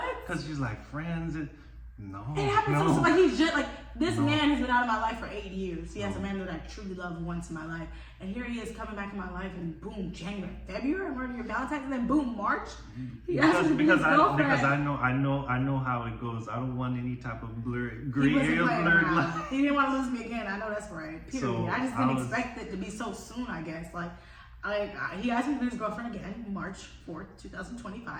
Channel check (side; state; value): both; identical; correlation 1.00